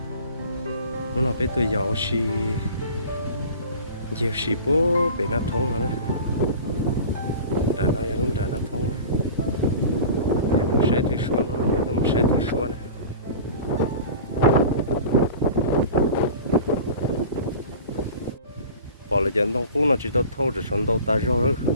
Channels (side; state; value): both; inverted; correlation -0.38